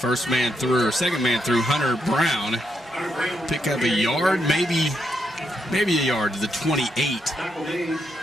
man through, or second man through, Hunter Brown. Pick up a yard, maybe a yard to the 28.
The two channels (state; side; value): normal; both; correlation 0.80